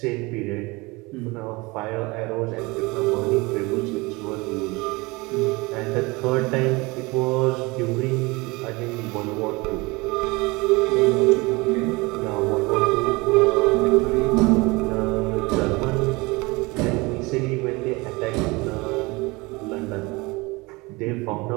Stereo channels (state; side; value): quieter; left; 24.4 dB